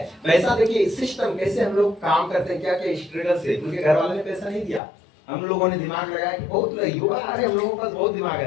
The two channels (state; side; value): drops out; right; at 4.8 s